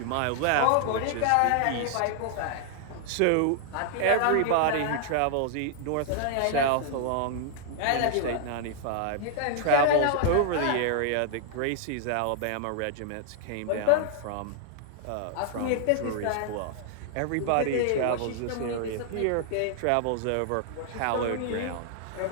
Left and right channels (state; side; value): different; both; correlation 0.00